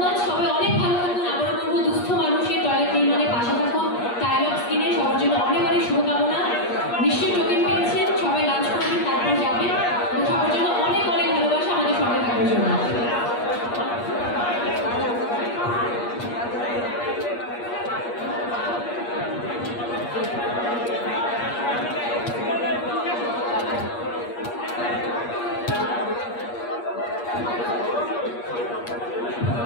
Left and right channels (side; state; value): right; late; 8.4 ms